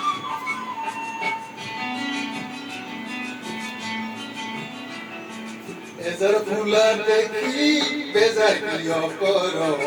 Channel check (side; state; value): both; identical; correlation 1.00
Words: এজার ফুলা দেখি বেজার কিয় কর